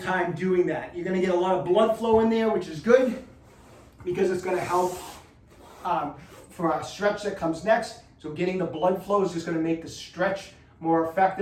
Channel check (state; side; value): identical; both; correlation 1.00